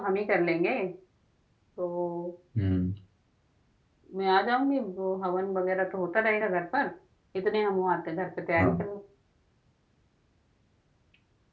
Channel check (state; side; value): identical; both; correlation 1.00